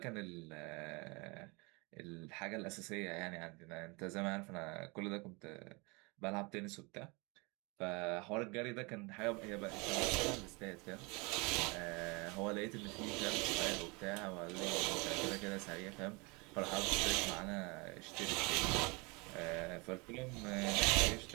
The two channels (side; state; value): left; quieter; 28.3 dB